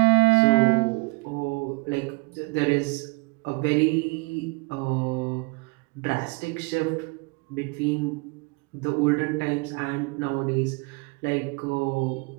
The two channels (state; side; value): quieter; left; 29.7 dB